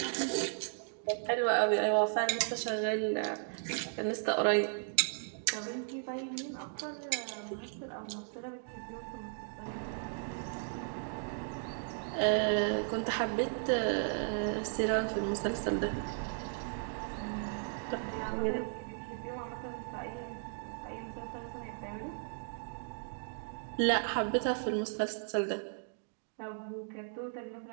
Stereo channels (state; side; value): silent; left; digital silence